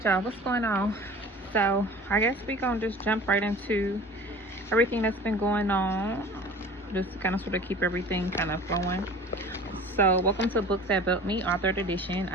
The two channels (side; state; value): both; normal; correlation 0.41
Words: y'all, what's going on? So I guess we gonna just jump right into everything that's been going on, just to kind of sort of keep everything kind of flowing. So welcome to Books That Built Me, authored edition.